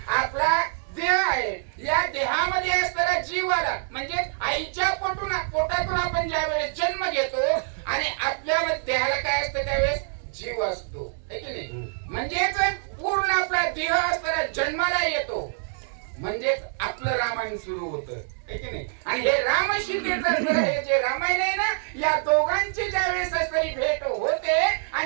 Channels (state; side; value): silent; left; digital silence